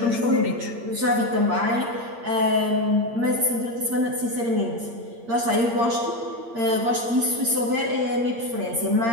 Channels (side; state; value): left; late; 8.7 ms